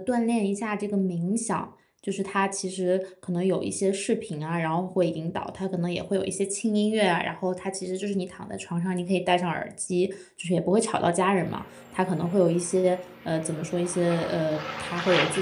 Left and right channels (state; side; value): identical; both; correlation 1.00